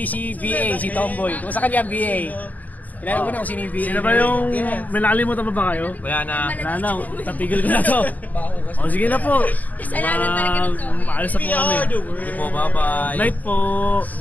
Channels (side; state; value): right; late; 0.078 ms